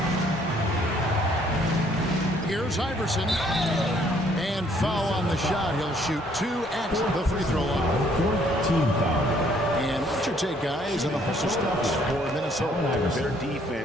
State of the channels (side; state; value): both; normal; correlation 0.64